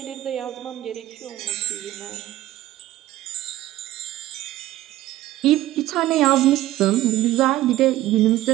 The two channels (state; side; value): quieter; left; 15.2 dB